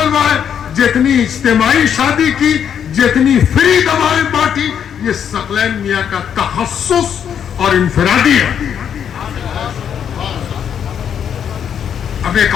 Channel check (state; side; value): quieter; right; 8.4 dB